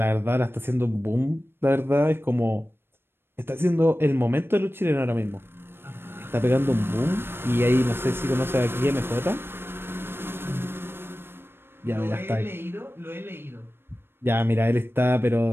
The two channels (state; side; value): late; left; 0.11 ms